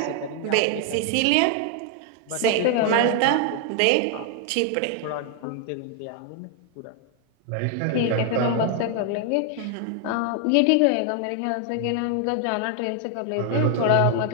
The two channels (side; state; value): both; different; correlation 0.00